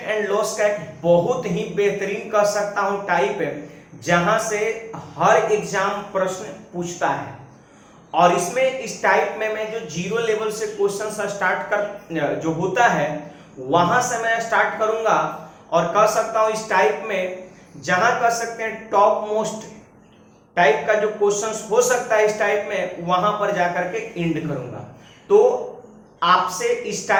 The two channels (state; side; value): identical; both; correlation 1.00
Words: एंड लॉस का एक बहुत ही बेहतरीन कह सकता हूं टाइप है जहां से हर एग्जाम प्रश्न पूछता है। और इसमें इस टाइप में मैं जो जीरो लेवल से क्वेश्चन स्टार्ट कर जो होता है वहां से मैं स्टार्ट करूंगा और कह सकता हूं इस टाइप में जहां कह सकते हैं टॉप मोस्ट टाइप का जो क्वेश्चंस हो सकता है इस टाइप में वहां पर जाकर के एंड करूंगा। तो आपसे इस